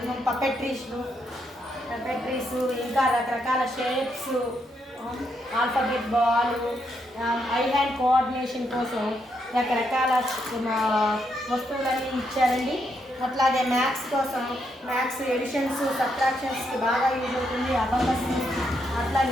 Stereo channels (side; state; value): both; normal; correlation 0.78